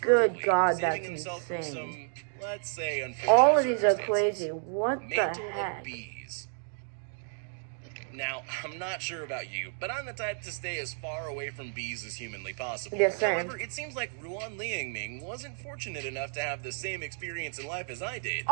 vertically, God, saving that's himself from insane. some, let's say, unfortunate All of these are circumstances. crazy. What the Mantle of heck? bees. Now, I'm not sure about you, but I'm the type to stay as far away from bees as humanly possible. Yes, same. However, it seems like Ruan Liangming wasn't fortunate enough to have the same experience in life as I did.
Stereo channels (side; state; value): left; silent; 57 dB below the other